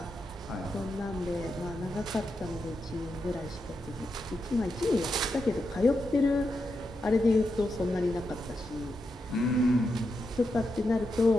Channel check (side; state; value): both; normal; correlation 0.86